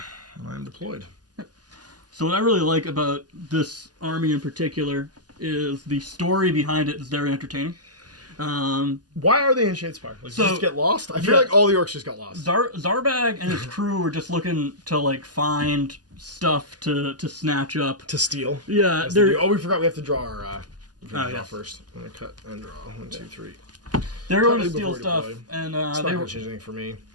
And I'm deployed. So what I really like about this army in particular is the story behind it is very entertaining. Why are they in Shadespire? Like, so, just get lost? I feel like all the orcs just got lost. Zarbag and his crew were just looking to like find stuff to snatch up. To steal. Yeah. We forgot we have to draw our draw first. I'm gonna cut and draw. 1, 2, 3. They're going to steal stuff, and it's not gonna change anything for me.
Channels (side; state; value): left; late; 0.69 ms